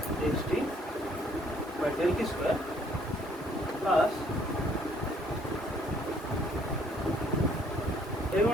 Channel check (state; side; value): normal; both; correlation 0.63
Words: xt by del t square plus